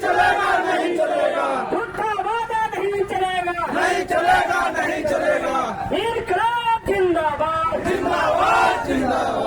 चलेगा नहीं चलेगा झूठा वादा नहीं चलेगा नहीं चलेगा नहीं चलेगा इनकलाब जिंदाबाद जिंदाबाद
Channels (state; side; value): identical; both; correlation 1.00